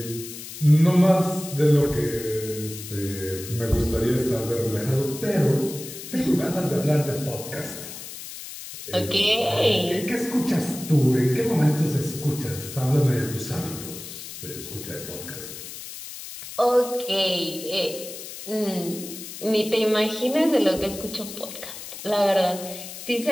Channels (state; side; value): noise; left; hiss, 11 dB below the sound